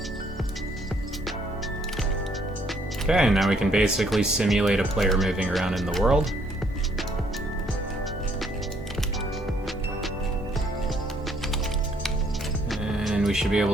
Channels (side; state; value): both; normal; correlation 0.67